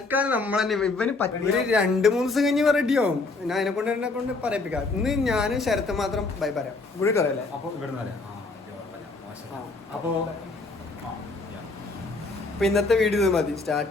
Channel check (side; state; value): right; quieter; 3.6 dB